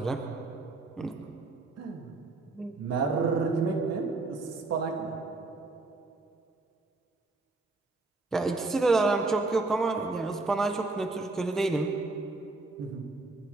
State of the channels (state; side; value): quieter; left; 3.3 dB